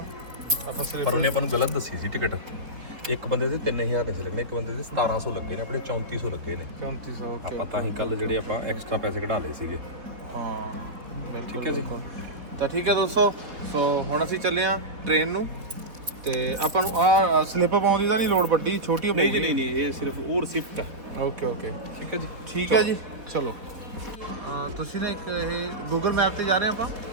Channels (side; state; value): left; late; 4.5 ms